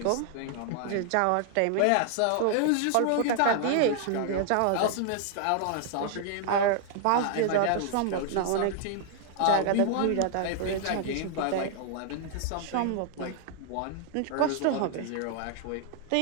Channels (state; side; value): different; both; correlation 0.00